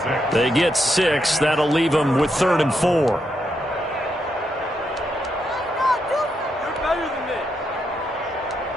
They get 6. That'll leave them with 3rd and 4.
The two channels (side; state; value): both; normal; correlation 0.81